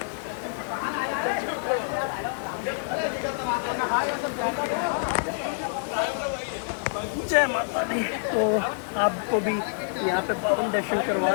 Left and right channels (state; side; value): silent; right; digital silence